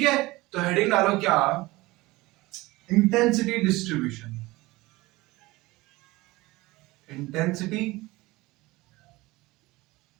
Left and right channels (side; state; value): left; quieter; 20.6 dB